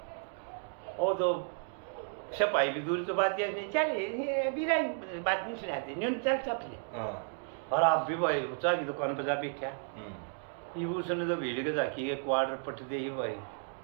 वो तो सिपाही भी दूर तो बात नहीं चले बिना बात नहीं सुनाते न्यून चल चपले और आप भी भाई चाय की दुकान पर जा बैठा ये उसने तो भीड़ के जाकी के क्वार्टर पट दे ही भाई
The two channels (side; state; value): left; silent; 56 dB below the other